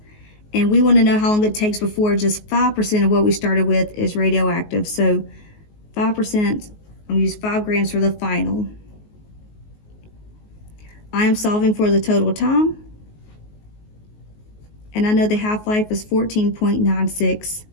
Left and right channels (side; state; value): right; late; 19 ms